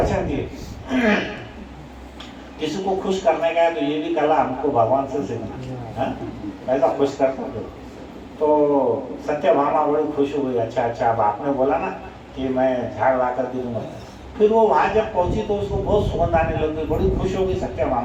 दिए। किसी को खुश करने का है तो ये भी कला हमको भगवान से सीखना, ऐसा खुश करता हो। तो सत्यभामा बड़ी खुश हो गई, अच्छा अब आपने बोला ना कि मैं झाड़ ला कर दे दूंगा। फिर वो वहाँ जब पहुंची तो उसको बहुत सुगंध आने लग गई, बड़ी खुश हो गई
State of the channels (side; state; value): both; identical; correlation 1.00